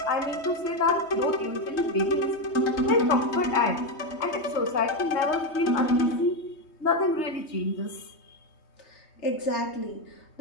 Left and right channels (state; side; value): late; right; 3.2 ms